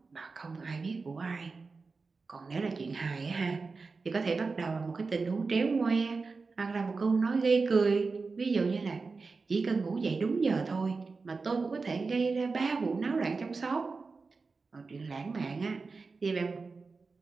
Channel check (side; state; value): left; quieter; 4.3 dB